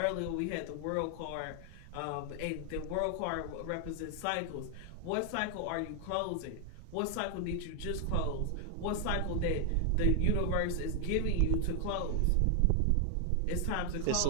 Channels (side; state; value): both; different; correlation 0.00